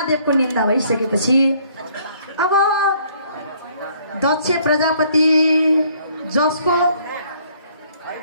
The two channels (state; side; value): inverted; both; correlation -0.63